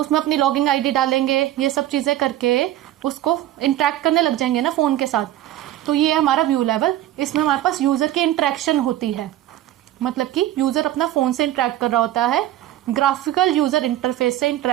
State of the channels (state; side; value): quieter; left; 13.4 dB